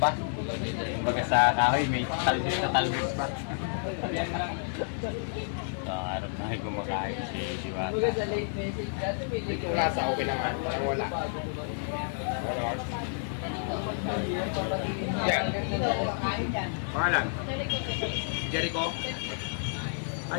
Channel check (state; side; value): silent; right; digital silence